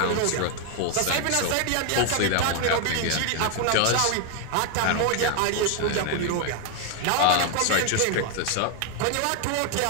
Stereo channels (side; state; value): both; different; correlation 0.00